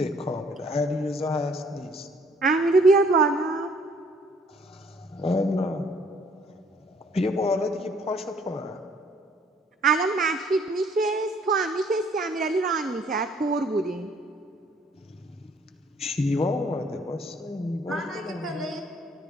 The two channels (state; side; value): normal; both; correlation 0.60